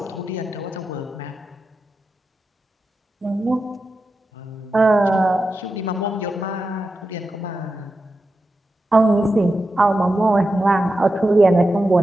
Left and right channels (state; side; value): normal; both; correlation 0.90